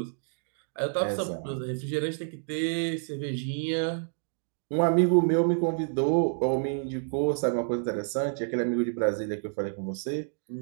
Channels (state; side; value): silent; left; digital silence